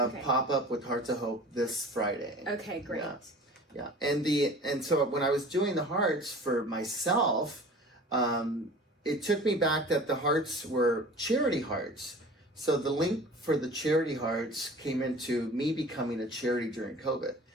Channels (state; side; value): normal; both; correlation 0.42